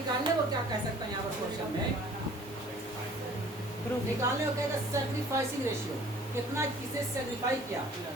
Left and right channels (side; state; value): both; normal; correlation 0.51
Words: को क्या कह सकता है यहाँ पर क्वेश्चन में, निकालने को कहेगा सैक्रिफाइसिंग रेशियो, कितना किसे सैक्रिफाई किया,